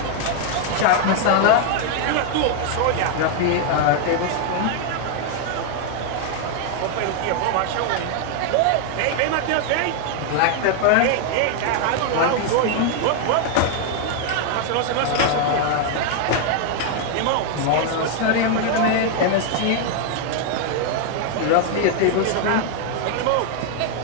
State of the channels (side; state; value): both; different; correlation 0.00